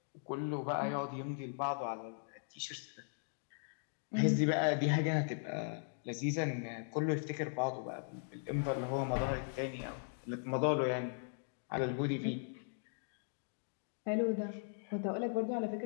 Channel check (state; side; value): silent; right; digital silence